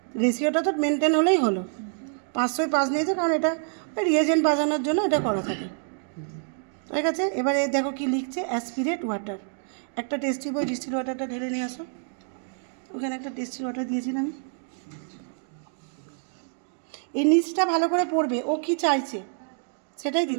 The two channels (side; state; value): left; silent; 60 dB below the other